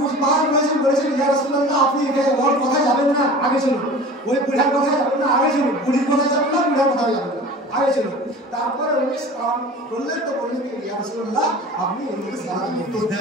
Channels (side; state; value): both; normal; correlation 0.39